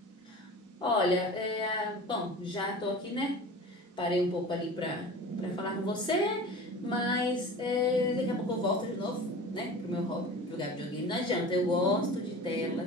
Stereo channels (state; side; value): normal; both; correlation 0.37